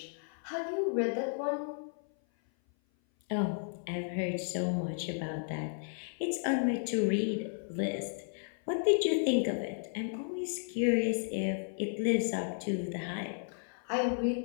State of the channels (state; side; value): silent; right; 55 dB below the other